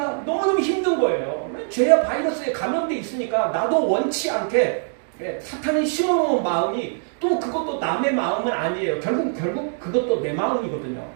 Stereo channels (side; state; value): left; silent; digital silence